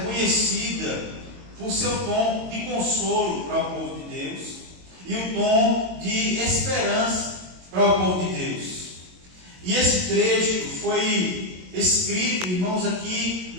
conhecida por seu tom de consolo para o povo de Deus e o tom de esperança para o povo de Deus. E esse trecho foi escrito, irmãos, aqui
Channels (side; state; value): left; late; 22 ms